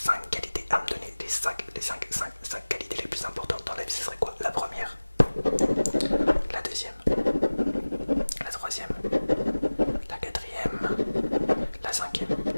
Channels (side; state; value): both; inverted; correlation -1.00